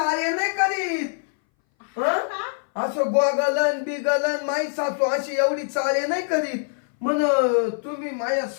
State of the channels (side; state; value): right; silent; 60 dB below the other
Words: नाही करीत. असं गोगलन बिगलन, माई सासू अशी एवढी चाळे नाही करीत. म्हण तुम्ही माझ्या